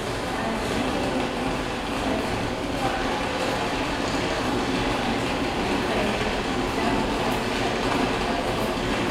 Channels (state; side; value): identical; both; correlation 1.00